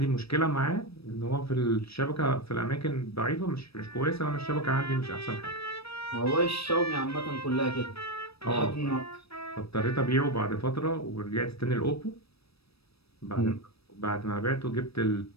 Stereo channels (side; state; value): right; late; 0.78 ms